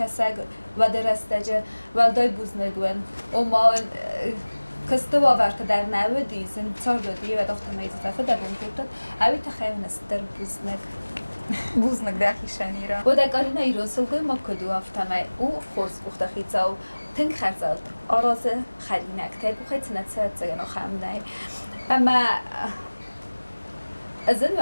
وده رستجه ولدای بوز نگون و ما کسته باورت در نودی زن چار دادی و داخت میزه فده بوند کردن اوی تخیل نستر بوز نگ بوزنک داخیشانی را و در گارینا ایران سلگوی ما کدو افتمه او خورس بخته خیزا و تنگ خرزاد آراز خرینک تیگو خیلی نتسرد زگن و خمنه اما از این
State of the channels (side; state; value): both; inverted; correlation -1.00